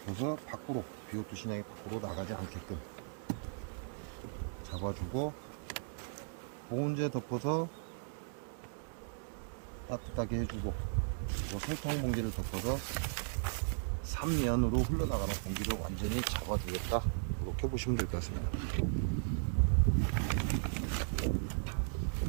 밖으로, BO2 신약이 밖으로 나가지 않게끔 잡아주고, 보온제 덮어서 따뜻하게 해주고, 그리고 설탕 봉지를 덮어서 3면으로 흘러나가는 공기를 완전히 잡아주겠다. 이렇게 보시면 될 것 같습니다.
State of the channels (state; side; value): silent; left; digital silence